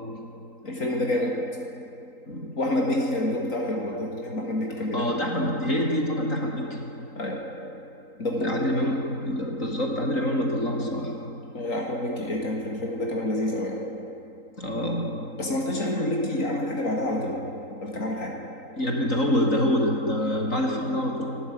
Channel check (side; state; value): right; late; 3.9 ms